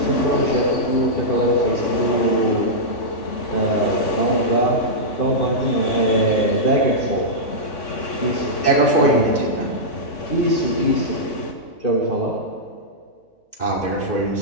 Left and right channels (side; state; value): right; late; 3.6 ms